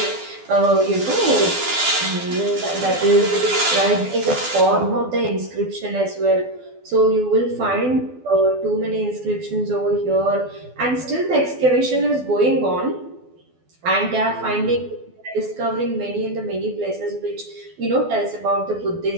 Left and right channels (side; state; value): left; late; 12 ms